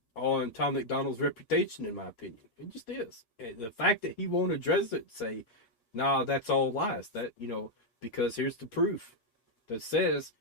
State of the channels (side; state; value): right; late; 8.4 ms